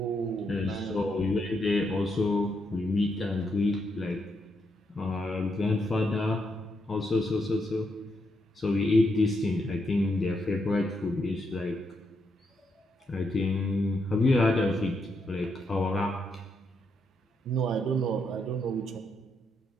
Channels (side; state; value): both; normal; correlation 0.80